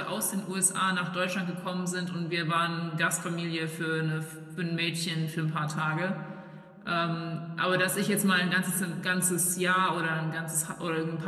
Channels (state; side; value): identical; both; correlation 1.00